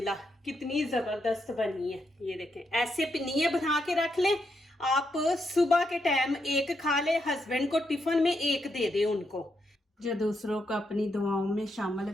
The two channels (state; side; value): normal; both; correlation 0.80